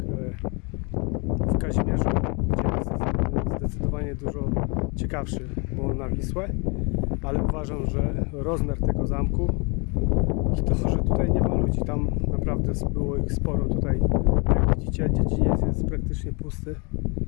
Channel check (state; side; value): quieter; right; 31.8 dB